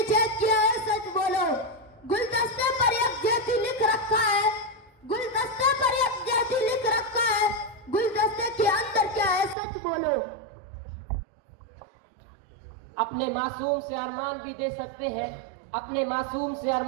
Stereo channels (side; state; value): left; drops out; at 9.6 s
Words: चेक किया है सच बोलो। गुलदस्ते पर एक जेठी लिख रखा है, गुलदस्ते पर एक जेठी लिख रखा है, गुलदस्ते के अंदर क्या है सच बोलो। अपने मासूम से अरमान भी दे सकते हैं, अपने मासूम से